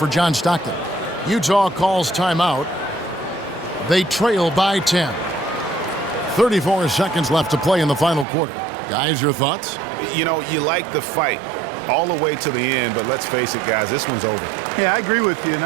John Stockton. Utah calls timeout. They trail by 10. 34 seconds left to play in the final quarter. Guys, your thoughts? You know, you like the fight all the way to the end, but let's face it, guys, this one's over. Yeah, I agree with you, and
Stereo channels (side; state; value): left; drops out; at 8.2 s